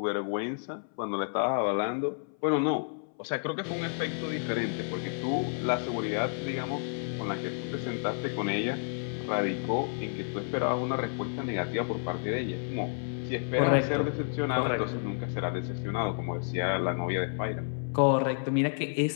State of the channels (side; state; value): right; silent; 57 dB below the other